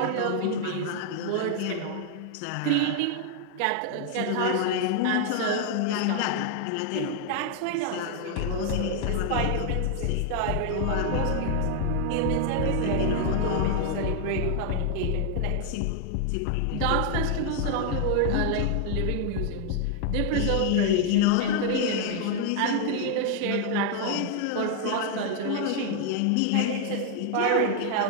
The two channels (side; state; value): both; different; correlation 0.00